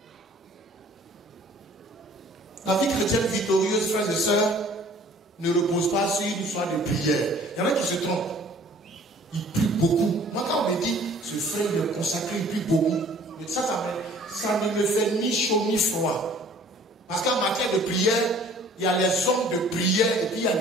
La vie chrétienne victorieuse, frères et sœurs, ne repose pas sur une histoire de prière. Il y en a qui se trompent. Ils prient beaucoup. Moi, quand on me dit, ce frère il est consacré, il prie beaucoup. Mais ça ne me fait ni chaud ni froid. Parce qu'en matière de prière, il y a les hommes de prière et puis il y a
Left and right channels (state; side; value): normal; both; correlation 0.52